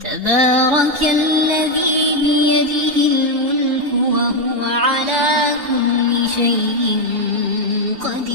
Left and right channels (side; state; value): left; late; 2.7 ms